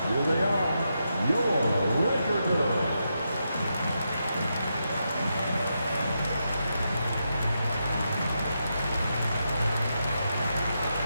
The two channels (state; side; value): inverted; both; correlation -0.84